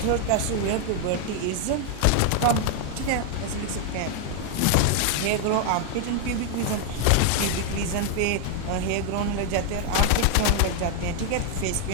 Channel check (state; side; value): different; both; correlation 0.00